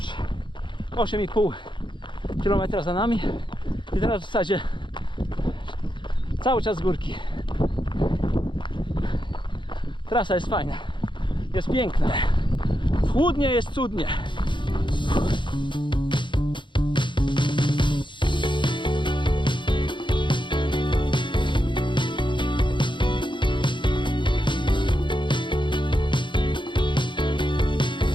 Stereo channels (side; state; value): right; late; 0.23 ms